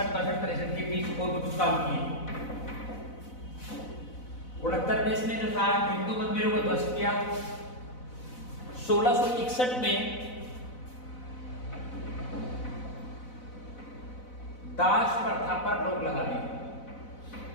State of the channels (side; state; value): right; late; 4.0 ms